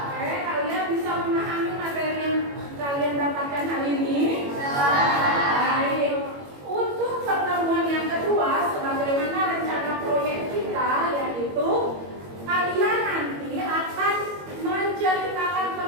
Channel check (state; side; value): late; left; 21 ms